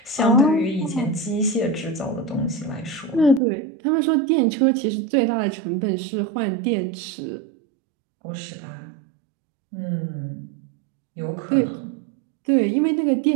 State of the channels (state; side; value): drops out; left; at 3.4 s